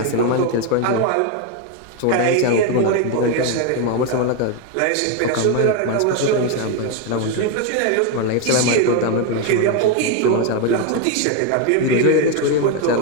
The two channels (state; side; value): different; both; correlation 0.02